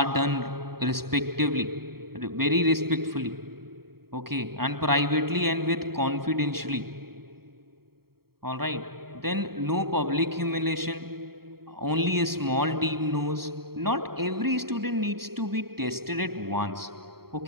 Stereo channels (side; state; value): left; late; 0.95 ms